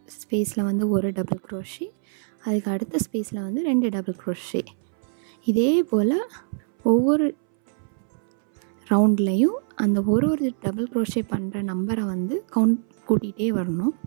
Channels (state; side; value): silent; left; 62 dB below the other